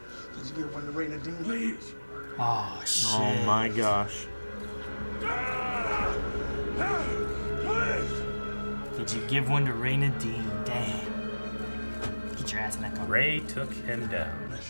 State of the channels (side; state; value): both; inverted; correlation -1.00